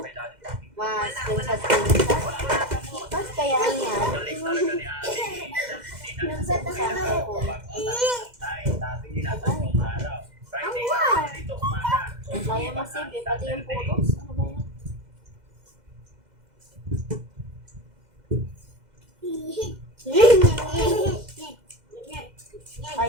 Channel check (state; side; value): late; left; 2.0 ms